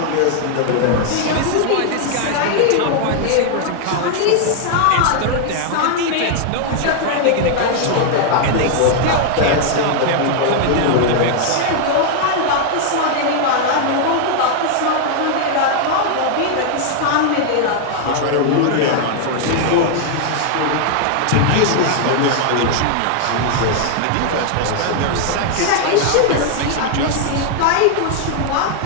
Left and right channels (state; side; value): different; both; correlation 0.00